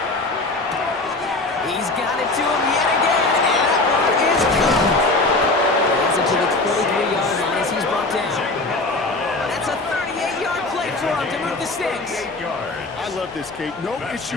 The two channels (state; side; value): quieter; right; 3.1 dB